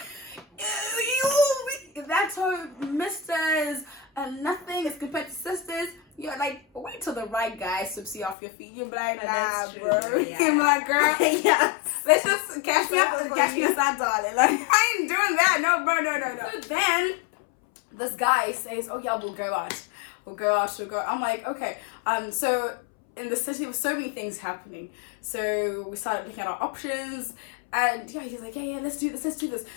that's how misters and nothing is compared to sisters. You're like, wait till the right guy sweeps you off your feet. You're like, nah, That's true, bro. yeah. You're my girl. Yes. Let's just catch me outside, darling. Like, I ain't doing that. No, bro, no. So then, this guy says, oh yeah, we'll go out. I'm like, okay. So in the city, there were so many things happening. So we started looking at our options. And yeah, he's like, yeah, let's do this.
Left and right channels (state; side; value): drops out; right; at 8.3 s